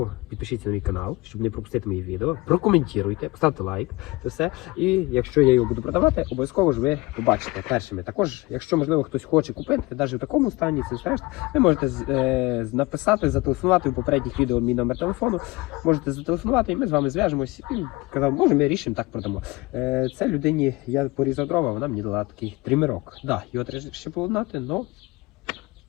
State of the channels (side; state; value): right; quieter; 22.3 dB